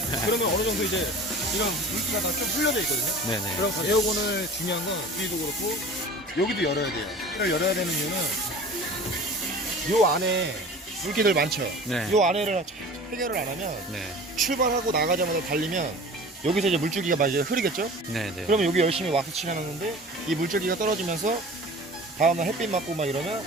그러면 어느 정도 이제 이런 물기가 다 좀 흘려져 있거든요. 네네. 그럼 에어건을 중요한 건 위도 그렇고 여기도 열어야 돼요. 이걸 열어야 되는 이유는 요 안에 물기들 많죠? 네. 요 안에를 해결을 안 하면 네. 출발하고 나가자마자 달리면 여기서 이제 물줄기가 막 이제 흐르겠죠? 네네. 그러면 여기 열심히 왁스 칠해놨는데 이 물줄기가 떨어지면서 다음날 햇빛 맞고 막 이러면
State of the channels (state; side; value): normal; both; correlation 0.40